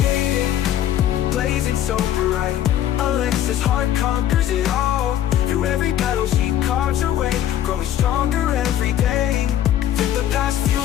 blazing so bright. Alexa's heart conquers it all. Through every battle she carves her way, growing stronger every day. Let the past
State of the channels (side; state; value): right; quieter; 11.4 dB